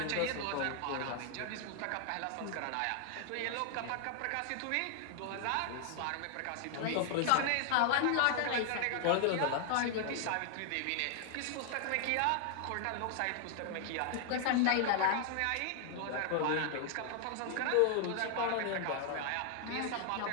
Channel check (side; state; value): both; different; correlation 0.00